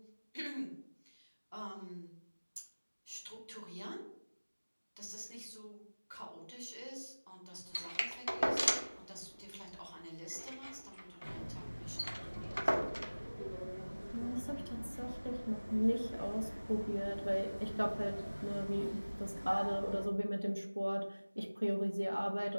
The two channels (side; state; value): both; inverted; correlation -1.00